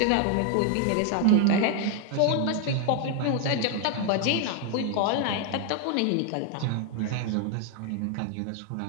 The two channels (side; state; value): both; different; correlation 0.01